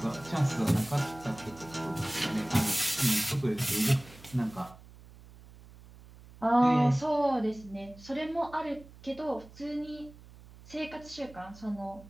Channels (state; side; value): noise; right; hum, 20 dB below the sound